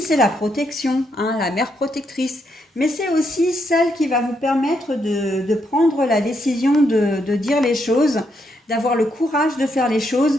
la protection, hein, la mère protectrice. Mais c'est aussi celle qui va vous permettre de prendre la décision de dire les choses, d'avoir le courage de faire les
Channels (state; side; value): normal; both; correlation 0.78